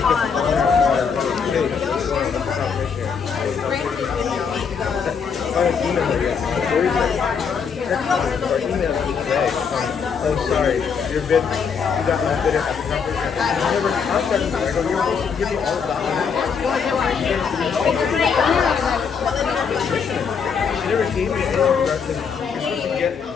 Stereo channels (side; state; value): right; quieter; 6.3 dB